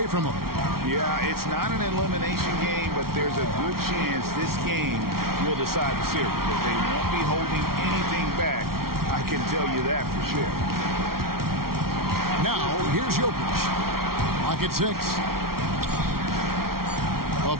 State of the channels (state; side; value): late; left; 0.93 ms